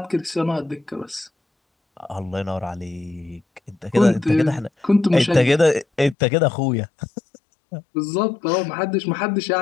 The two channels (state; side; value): drops out; right; at 6.2 s